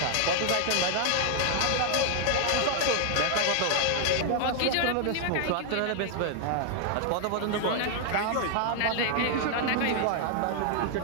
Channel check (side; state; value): both; different; correlation 0.00